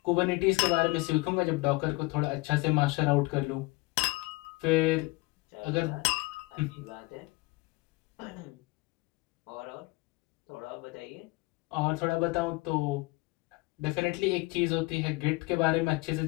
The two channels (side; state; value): right; quieter; 23.7 dB